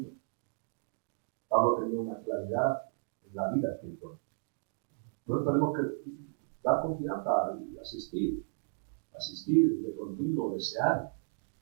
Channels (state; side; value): silent; left; digital silence